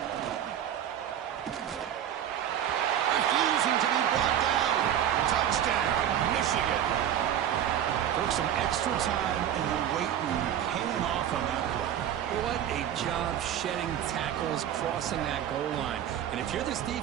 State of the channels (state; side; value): quieter; left; 10.3 dB